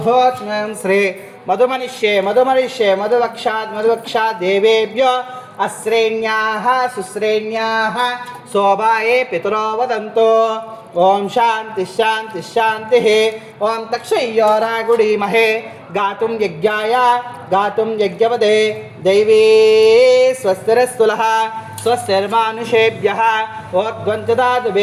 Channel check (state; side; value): identical; both; correlation 1.00